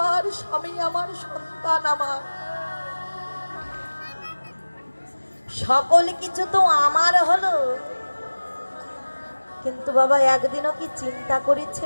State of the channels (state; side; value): inverted; both; correlation -1.00